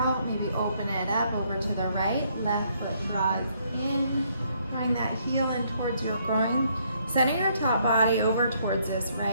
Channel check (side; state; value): both; inverted; correlation -0.70